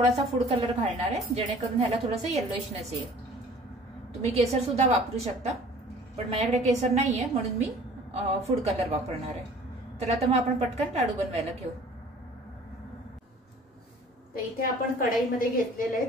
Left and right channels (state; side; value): normal; both; correlation 0.49